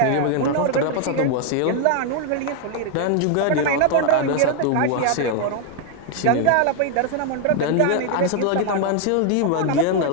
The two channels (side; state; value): both; different; correlation 0.00